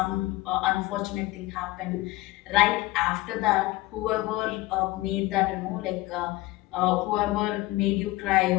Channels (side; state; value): right; quieter; 18.9 dB